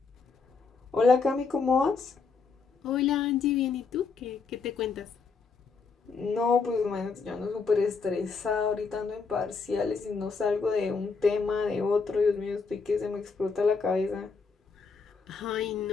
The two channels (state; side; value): quieter; right; 4.8 dB